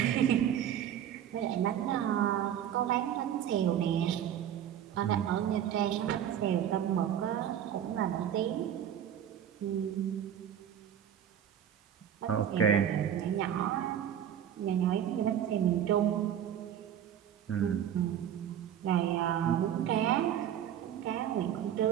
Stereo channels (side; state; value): left; quieter; 9.9 dB